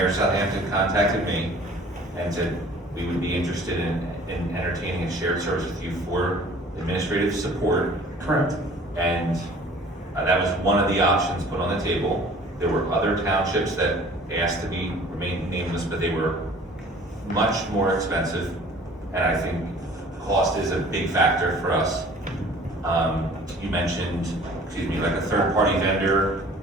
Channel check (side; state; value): both; normal; correlation 0.50